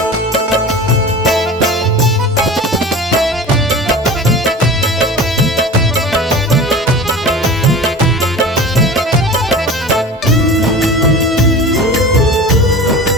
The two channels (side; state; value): both; normal; correlation 0.35